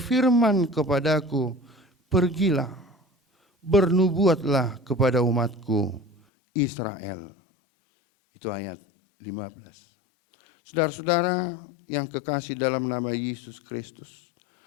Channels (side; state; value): right; drops out; at 6.2 s